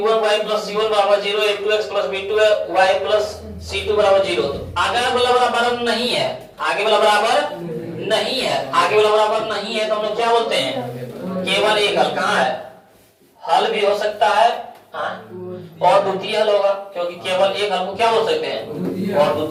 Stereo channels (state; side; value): identical; both; correlation 1.00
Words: + c1 बराबर 0, a2x + b2y + c2 बराबर 0। आगे वाला बराबर नहीं है, आगे वाला बराबर नहीं है, आगे वाला बराबर नहीं है तो हम लोग क्या बोलते हैं केवल एक हल। कहाँ है, हल भी हो सकता है और द्वितीय हल होगा, क्योंकि केवल एक हल को क्या बोल सकते हैं और